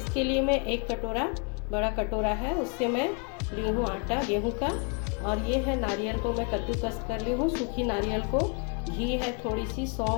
लिए मैं एक कटोरा, बड़ा कटोरा है, उससे मैं ली हूँ आटा गेहूं का। और ये है नारियल को मैं कद्दूकस कर ली हूँ, सूखी नारियल को। घी है, थोड़ी सी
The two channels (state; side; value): quieter; right; 35.9 dB